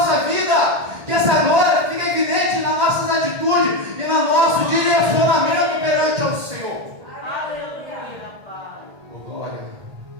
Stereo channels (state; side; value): late; left; 1.6 ms